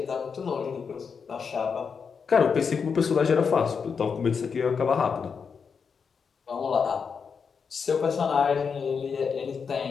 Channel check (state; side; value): quieter; right; 6.0 dB